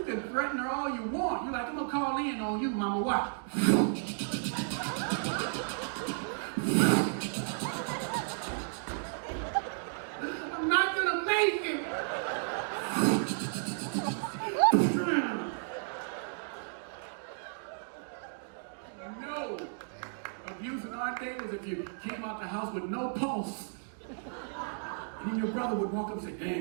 can threaten her all you want. You're like, I'm going to call in on you, Mama. Watch. I'm not going to make it. No. Abuse in our day was if you came out the house with no pulse. And then your brother would walk up and say,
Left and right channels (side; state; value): left; silent; digital silence